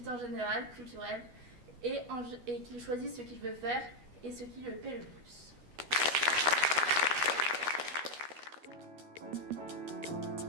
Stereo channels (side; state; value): left; late; 12 ms